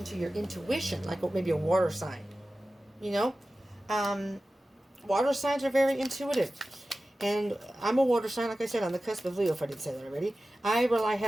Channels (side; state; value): both; normal; correlation 0.95